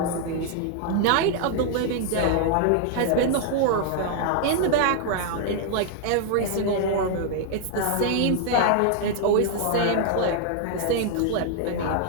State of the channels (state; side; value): different; both; correlation 0.00